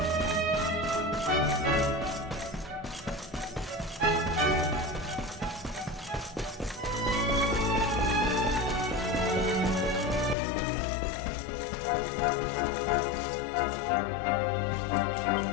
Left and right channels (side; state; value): right; drops out; at 10.4 s